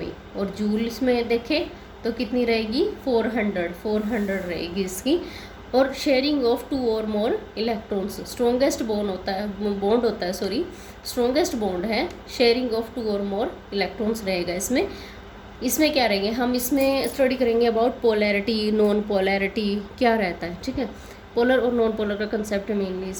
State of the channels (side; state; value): both; identical; correlation 1.00